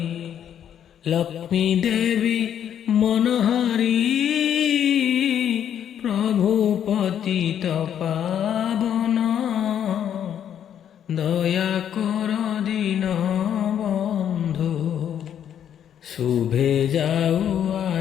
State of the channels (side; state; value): right; quieter; 9.4 dB